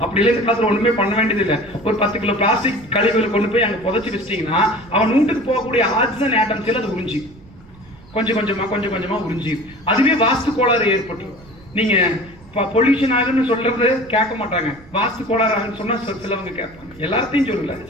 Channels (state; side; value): noise; right; rumble, 23 dB below the sound